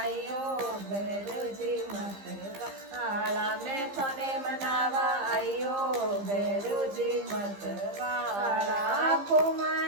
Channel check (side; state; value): left; late; 15 ms